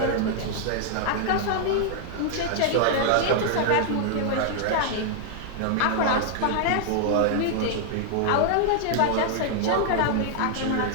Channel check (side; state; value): both; different; correlation -0.01